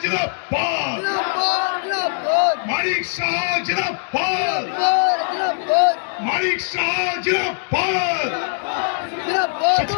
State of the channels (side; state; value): right; silent; digital silence